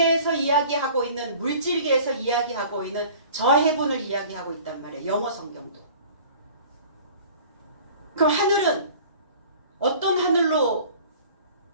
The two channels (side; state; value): both; inverted; correlation -0.46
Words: 이야기하고 있는, 물질계에서 이야기하고 있는 저 heaven을 이야기하고 있단 말이에요. 영어 성경도. 그럼 하늘은 어떤 하늘로